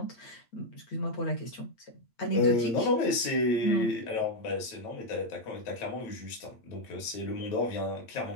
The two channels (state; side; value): late; right; 8.7 ms